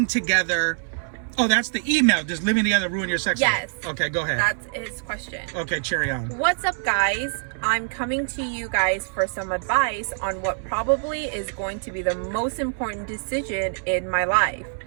together? Oh, that's the email. Does living together ruin your sex life? Yes. Okay, go ahead. That's his question. Okay, cherry on. What's up, guys? I'm coming to you guys for some advice on what probably is going to be the most important decision in my life.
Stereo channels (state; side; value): silent; left; digital silence